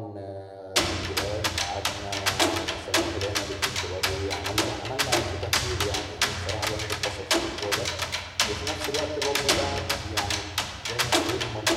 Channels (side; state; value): both; identical; correlation 1.00